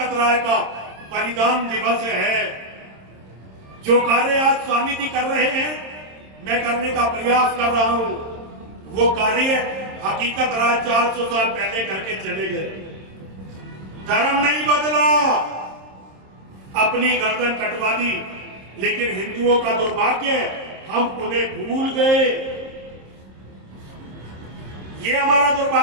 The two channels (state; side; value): late; left; 26 ms